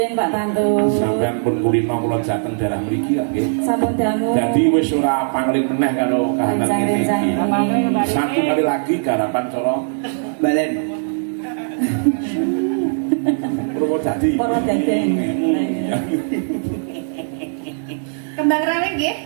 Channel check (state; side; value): silent; left; digital silence